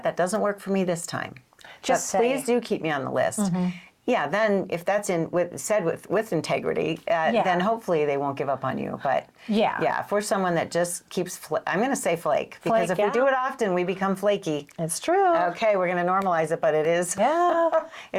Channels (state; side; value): identical; both; correlation 1.00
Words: that doesn't work for me this time. Just please do keep me on the list. Yeah, then if that's said with integrity, then hopefully they won't give up on you. But if we're someone that just keeps, I'm going to say flake, because if we do it often, we become flaky. It's true. Okay, we're going to normalize it, but it is. Yeah,